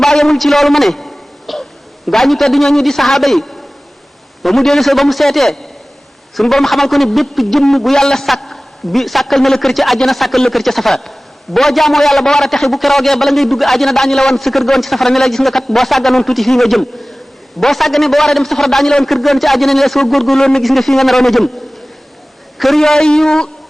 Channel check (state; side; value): normal; both; correlation 0.98